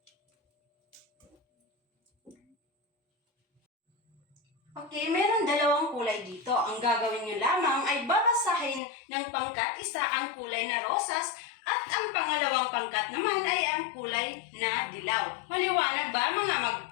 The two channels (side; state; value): right; drops out; at 8.8 s